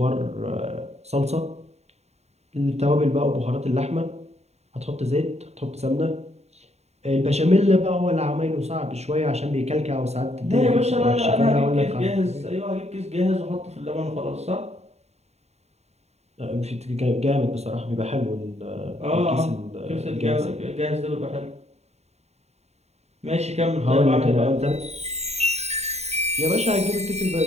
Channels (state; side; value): late; left; 0.31 ms